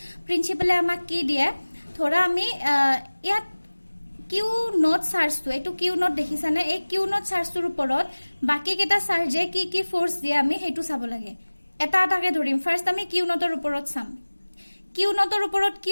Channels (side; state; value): both; inverted; correlation -1.00